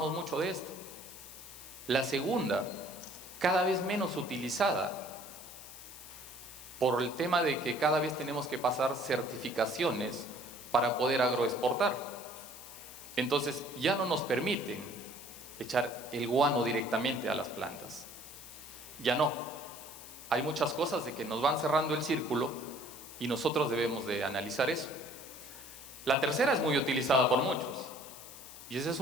mucho de esto. La segunda, cada vez menos utilizada, por el tema de que cada vez tenemos que pasar certificaciones para poder agroexportar. Entonces ya no nos permiten echar el guano directamente a las plantas. Ya no. Hay muchas cosas de que nos van cerrando el círculo y nosotros debemos de analizar eso. La tercera es muy utilizada por muchos y esa es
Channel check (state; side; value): noise; left; hiss, 14 dB below the sound